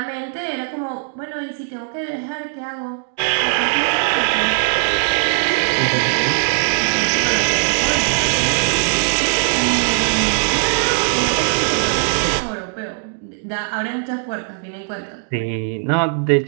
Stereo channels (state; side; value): silent; left; 66 dB below the other